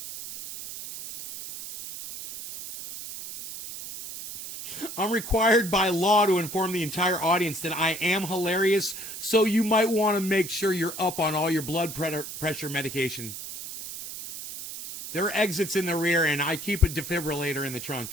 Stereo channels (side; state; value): right; noise; hiss, 9 dB below the sound